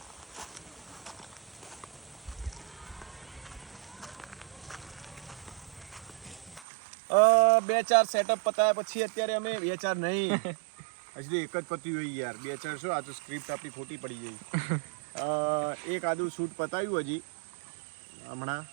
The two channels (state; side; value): drops out; left; at 6.7 s